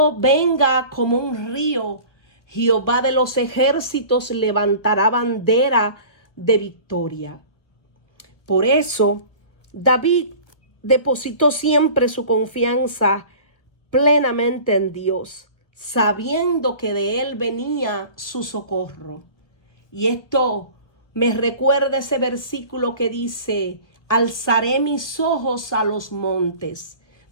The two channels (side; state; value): right; late; 1.3 ms